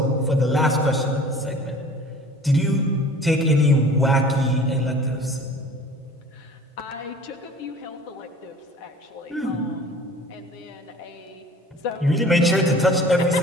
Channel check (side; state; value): both; normal; correlation 0.45